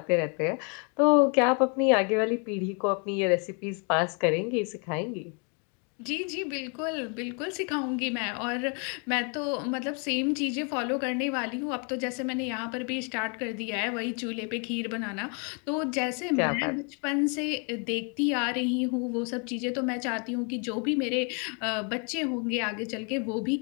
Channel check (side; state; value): right; quieter; 36.5 dB